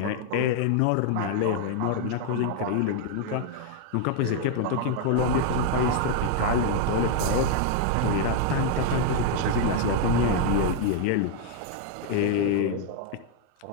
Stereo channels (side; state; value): both; different; correlation 0.00